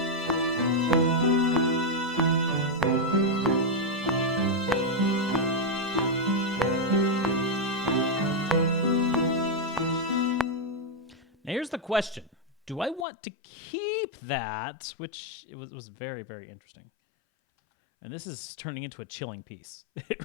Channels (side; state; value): right; drops out; at 13.1 s